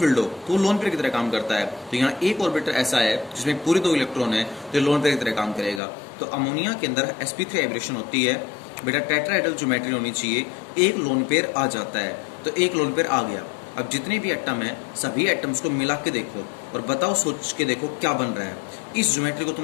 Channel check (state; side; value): drops out; right; at 5.8 s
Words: हो, तो वो लोन पेयर की तरह काम करता है। तो यहाँ एक ऑर्बिट ऐसा है जिसमें पूरे 2 इलेक्ट्रॉन है, तो ये लोन पेयर की तरह काम करेगा। तो अमोनिया के अंदर sp3 वाइब्रेशन होती है बेटा, टेट्राहेड्रल ज्योमेट्री होनी चाहिए, एक लोन पेयर आ जाता है, तो एक लोन पेयर आ गया। अब जितने भी एटम है सभी एटम्स को मिला के देखो और बताओ, सोच के देखो क्या बन रहा है। इस ज्योमेट्री को